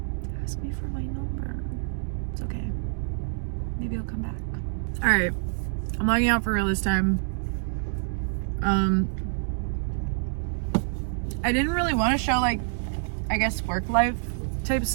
ask me for my number? It's okay. Maybe he'll come back. All right, I'm logging out for real this time. I didn't really want to show like, I guess, work life type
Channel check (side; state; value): left; silent; digital silence